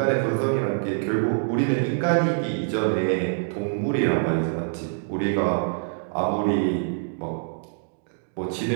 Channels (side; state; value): left; silent; digital silence